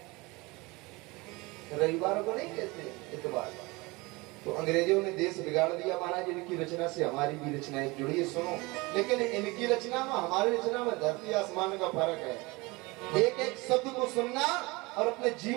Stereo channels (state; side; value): quieter; left; 24.1 dB